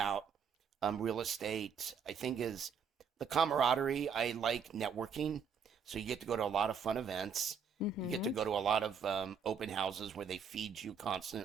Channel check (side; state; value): left; quieter; 6.3 dB